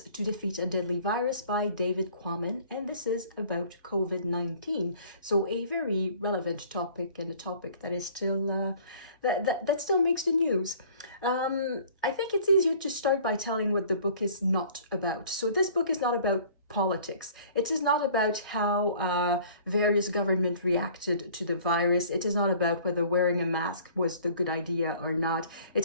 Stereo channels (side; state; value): both; inverted; correlation -0.52